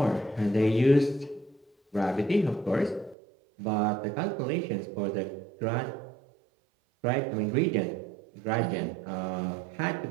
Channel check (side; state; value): left; drops out; at 3.2 s